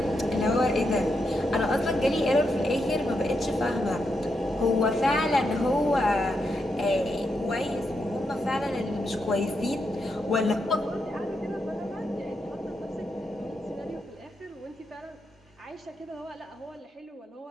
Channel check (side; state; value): both; normal; correlation 0.83